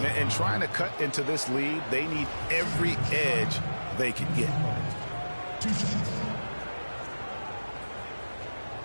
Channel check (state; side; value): inverted; both; correlation -1.00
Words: And trying to cut into this lead, they need every edge they can get.